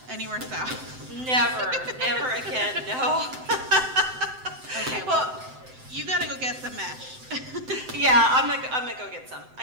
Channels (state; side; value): late; left; 7.8 ms